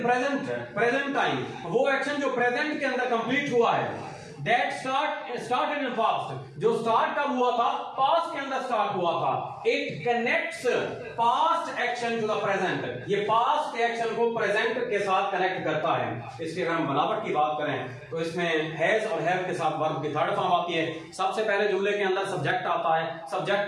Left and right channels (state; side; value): identical; both; correlation 1.00